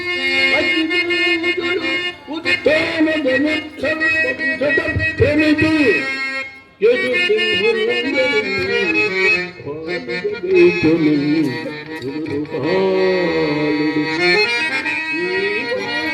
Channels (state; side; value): identical; both; correlation 1.00